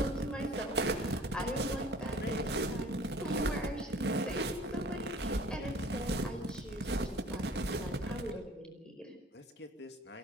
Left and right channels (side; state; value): both; normal; correlation 0.49